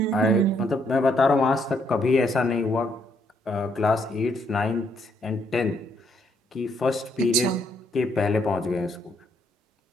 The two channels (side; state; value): both; normal; correlation 0.72